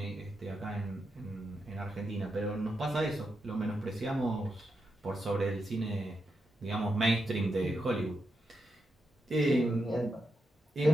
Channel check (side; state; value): both; normal; correlation 0.85